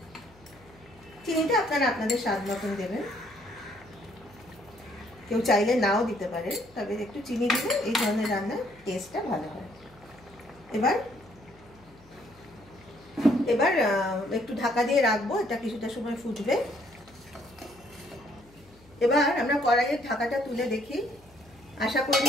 চিনিটা আপনারা আপনাদের স্বাদ মতন দেবেন, কেউ চাইলে নাও দিতে পারে, তবে একটু চিনি দিলে এই ধরনের রান্নার টেস্টটা ভালো হয়। এবার এবার একটু ঢাকা দিয়ে রাখবো, এটা কিছুটা সময় ফুটবে। এবার আমরা কড়াইয়ের ঢাকাটা তুলে দেখি, আশা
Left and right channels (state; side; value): noise; left; hum, 26 dB below the sound